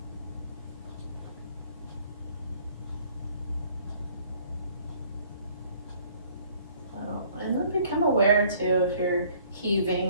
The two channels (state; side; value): inverted; both; correlation -0.58